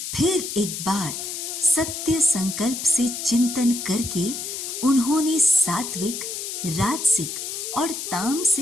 फिर एक बार सत्य संकल्प से चिंतन करके उन्होंने सात्विक, राजसिक और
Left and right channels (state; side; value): noise; left; hiss, 6 dB below the sound